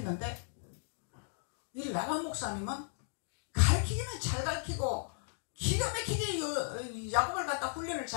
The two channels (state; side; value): silent; right; digital silence